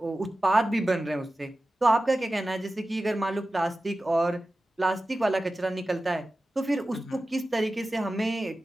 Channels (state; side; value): normal; both; correlation 0.95